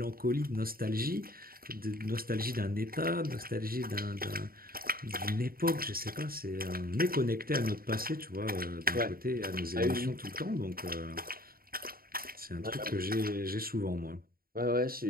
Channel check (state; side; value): late; left; 0.43 ms